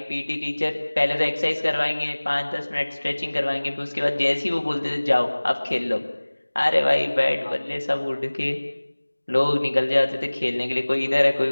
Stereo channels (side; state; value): both; inverted; correlation -1.00